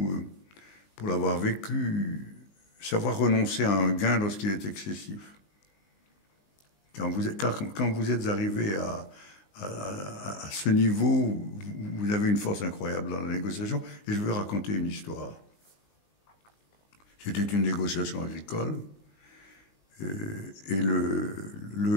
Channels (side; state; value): right; late; 20 ms